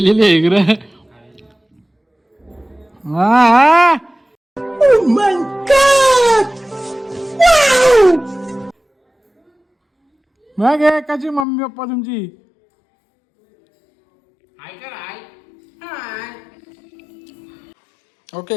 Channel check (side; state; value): right; drops out; at 11.5 s